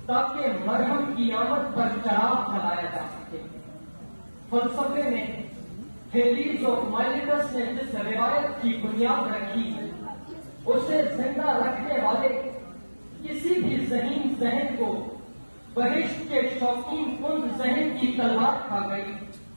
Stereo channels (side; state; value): both; inverted; correlation -1.00